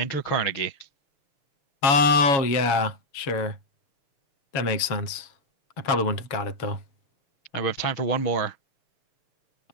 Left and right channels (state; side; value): late; right; 7.2 ms